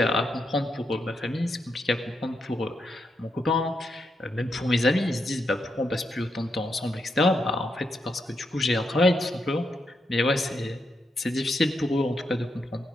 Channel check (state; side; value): normal; both; correlation 0.82